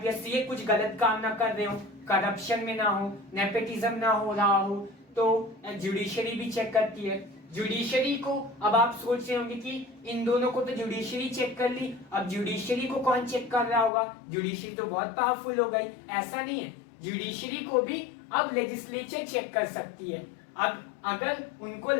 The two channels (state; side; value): drops out; right; at 13.9 s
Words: ये कुछ गलत काम ना कर रहे हो, करप्शन में ना हो, नेपोटिज्म ना हो रहा हो, तो जुडिशरी भी चेक करती है। जुडिशरी को अब आप सोच रहे होंगे कि इन दोनों को तो जुडिशरी चेक कर ली, अब जुडिशरी को कौन चेक कर रहा होगा? जुडिशरी तो बहुत पावरफुल हो गई। ऐसा नहीं है, जुडिशरी को भी अब लेजिस्लेचर चेक कर सकती है। अब अगर उनको